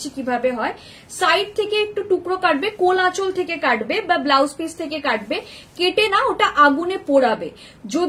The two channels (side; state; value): both; identical; correlation 1.00